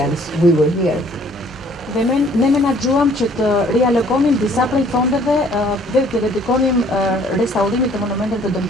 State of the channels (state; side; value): normal; both; correlation 0.58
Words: We were here. Dhe ne menaxhuam që të rialokonim disa prej fondeve dhe të dedikonim restaurimit të monumenteve të